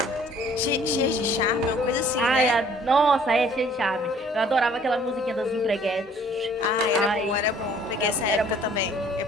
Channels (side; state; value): both; normal; correlation 0.56